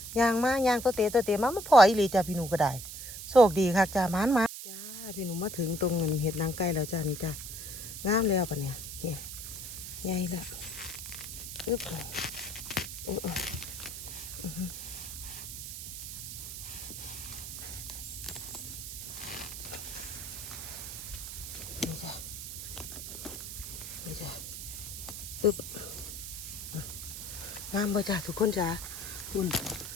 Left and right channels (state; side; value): noise; right; hiss, 8 dB below the sound